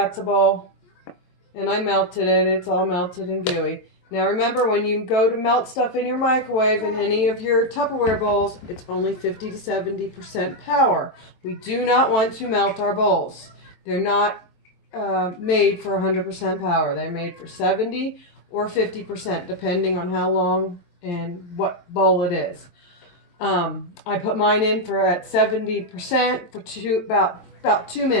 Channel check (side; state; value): right; late; 23 ms